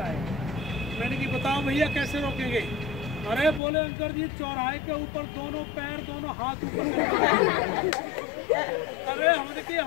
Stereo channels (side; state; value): right; drops out; at 3.6 s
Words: आए। मैंने की बताओ भैया कैसे रोकेंगे? अरे बोले अंकल जी चौराहे के ऊपर दोनों पैर दोनों हाथ ऊपर अरे हमने की